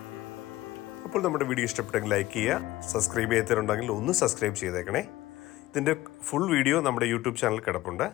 അപ്പോൾ നമ്മുടെ വീഡിയോ ഇഷ്ടപ്പെട്ടെങ്കിൽ ലൈക്ക് ചെയ്യുക, സബ്സ്ക്രൈബ് ചെയ്യാത്തവരുണ്ടെങ്കിൽ ഒന്ന് സബ്സ്ക്രൈബ് ചെയ്തേക്കണേ. ഇതിൻ്റെ ഫുൾ വീഡിയോ നമ്മുടെ യൂട്യൂബ് ചാനൽ കിടപ്പുണ്ട്,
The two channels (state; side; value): quieter; right; 16.9 dB